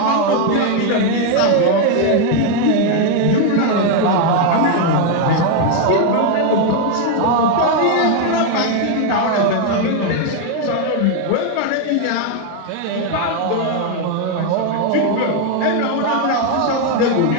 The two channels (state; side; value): different; both; correlation 0.01